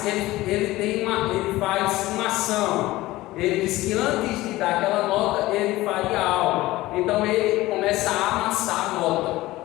ele faz uma ação. Ele diz que antes de dar aquela nota, ele faria algo. Então ele começa a amassar a nota.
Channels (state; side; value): quieter; right; 17.9 dB